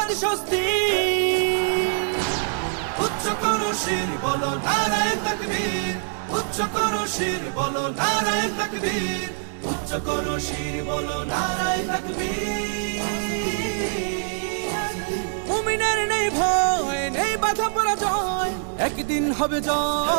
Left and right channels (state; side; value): silent; left; 60 dB below the other